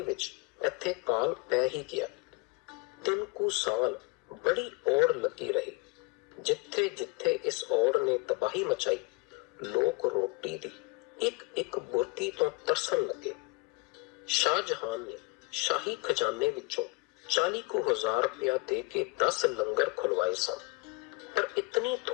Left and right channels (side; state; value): right; quieter; 26.1 dB